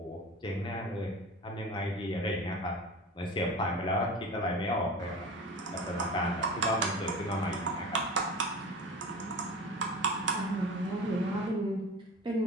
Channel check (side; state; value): both; normal; correlation 0.33